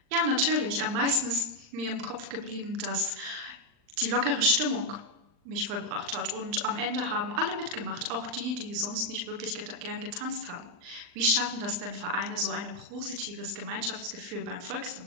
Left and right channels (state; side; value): late; left; 39 ms